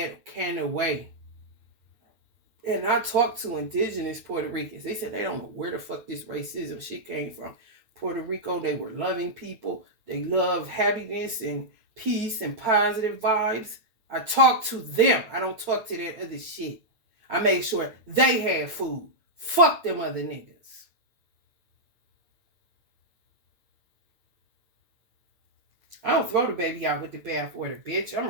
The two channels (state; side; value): late; left; 9.3 ms